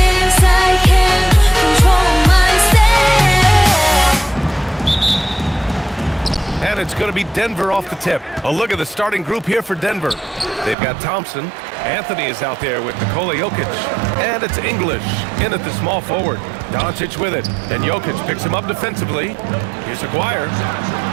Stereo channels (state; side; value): drops out; left; at 10.8 s